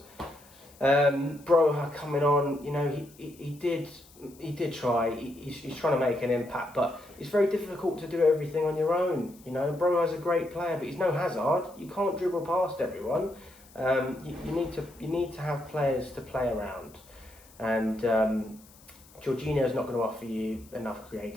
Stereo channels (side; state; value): left; noise; hiss, 25 dB below the sound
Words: Broha coming on, he did try. He's trying to make an impact, but it's very difficult to do everything on your own. Broha's a great player, but he's no Hazard. You can't dribble past everyone. You need to have players to play around, and Jorginho's not going to offer you enough